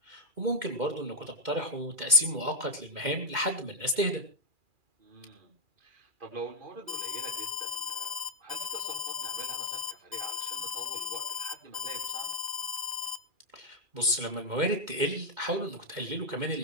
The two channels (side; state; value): left; late; 2.1 ms